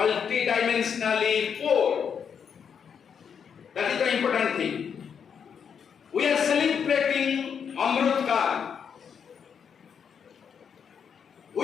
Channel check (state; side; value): quieter; right; 7.2 dB